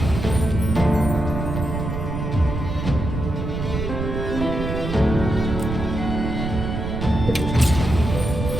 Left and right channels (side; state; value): right; noise; rumble, 4 dB below the sound